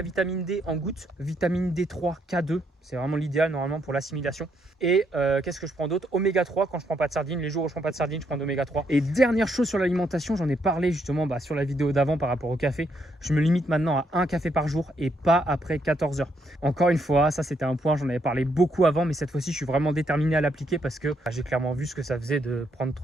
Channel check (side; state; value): both; normal; correlation 0.75